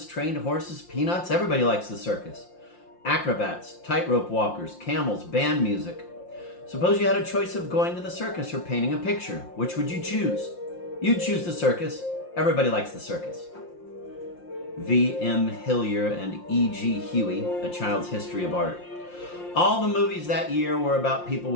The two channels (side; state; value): right; late; 5.7 ms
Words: trained horses, peanuts. Everybody likes the circus. Acrobats, tightrope walkers, camels, band music. Suppose you had a choice of going to the circus or painting a picture. Which would you choose? You'd choose the circus. Everybody likes the circus. V. M. Hillier and E. G. Huey, A Child's History of Art. All the movies that year were about people